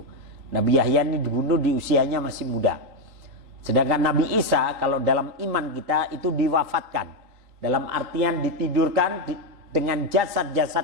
Nabi Yahya ini dibunuh di usianya masih muda. Sedangkan Nabi Isa kalau dalam iman kita itu diwafatkan, dalam artian ditidurkan dengan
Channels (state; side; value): late; left; 3.9 ms